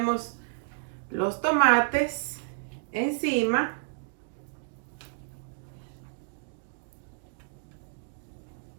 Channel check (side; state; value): left; silent; digital silence